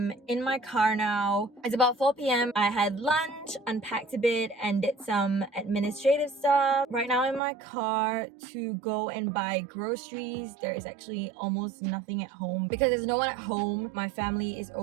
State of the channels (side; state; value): left; drops out; at 7.4 s